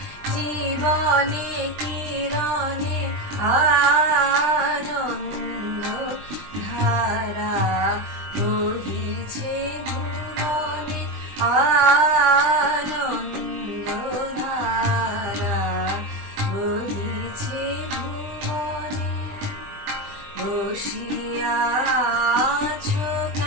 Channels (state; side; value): late; left; 20 ms